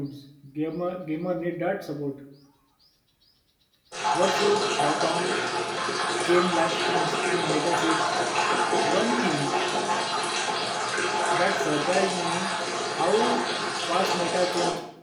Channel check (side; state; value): both; identical; correlation 1.00